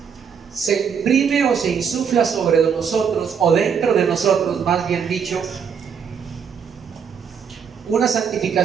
se imprime o se insufla sobre nosotros, o dentro de nosotros, más bien dicho, una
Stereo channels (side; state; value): left; quieter; 7.0 dB